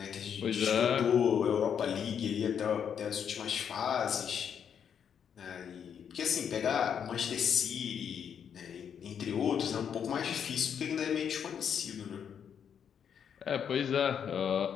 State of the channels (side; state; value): right; quieter; 7.9 dB